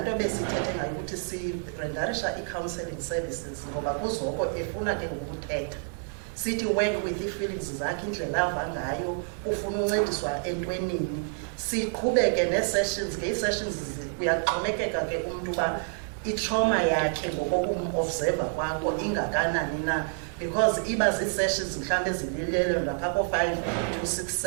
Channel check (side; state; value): left; silent; 59 dB below the other